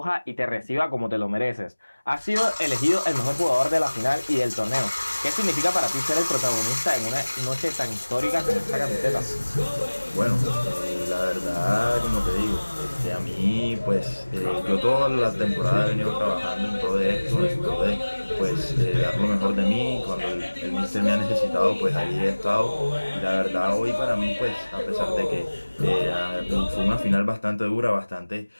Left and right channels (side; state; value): both; inverted; correlation -1.00